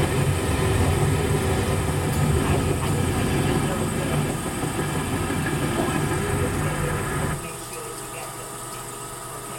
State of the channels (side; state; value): both; identical; correlation 1.00